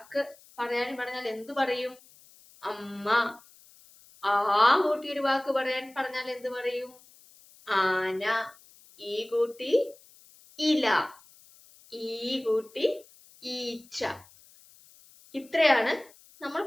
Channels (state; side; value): noise; left; hiss, 26 dB below the sound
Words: പറഞ്ഞാൽ എന്തു പറയും? അമ്മ. ആ കൂട്ടി ഒരു വാക്ക് പറഞ്ഞാൽ എന്ത് പറയും? ആന. ഈ കൂട്ടി ഇല, ഈ കൂട്ടി ഈച്ച. ഇത്രയാണ് നമ്മൾ